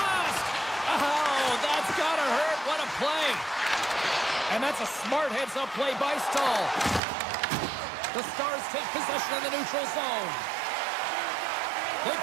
Oh, that's gotta hurt. What a play. And that's a smart heads-up play by Stahl. The Stars take possession of the neutral zone. They've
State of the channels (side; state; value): left; drops out; at 7.0 s